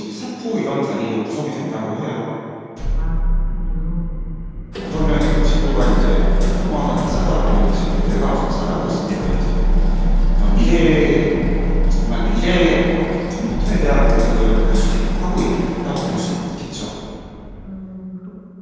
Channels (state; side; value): identical; both; correlation 1.00